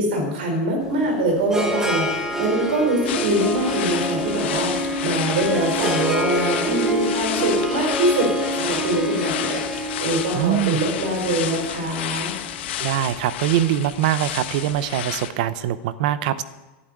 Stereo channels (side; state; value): both; normal; correlation 0.14